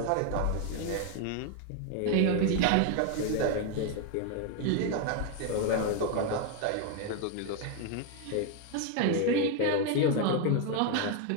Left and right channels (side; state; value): both; different; correlation 0.01